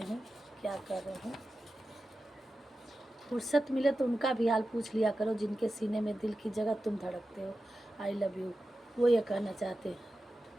क्या कर रहे हैं। फुर्सत मिले तो उनका भी हाल पूछ लिया करो, जिनके सीने में दिल की जगह तुम धड़कते हो। आई लव यू, वो ये कहना चाहते हैं।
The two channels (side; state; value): both; normal; correlation 0.93